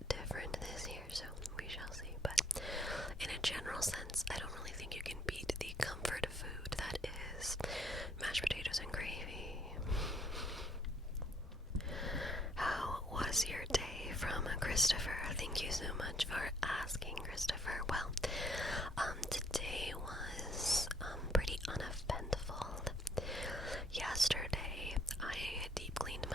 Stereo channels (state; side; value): normal; both; correlation 0.67